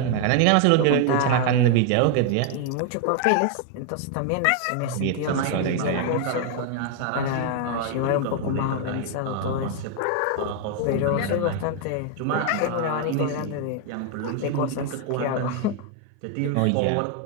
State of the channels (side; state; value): both; different; correlation 0.00